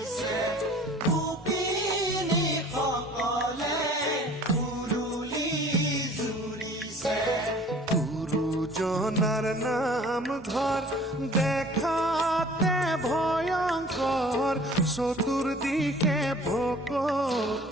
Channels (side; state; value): both; normal; correlation 0.49